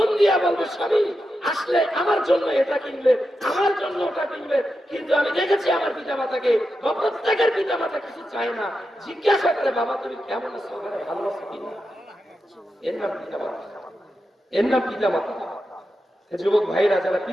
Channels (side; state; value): both; normal; correlation 0.88